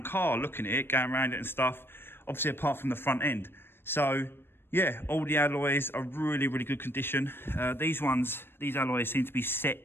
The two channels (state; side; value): late; right; 0.11 ms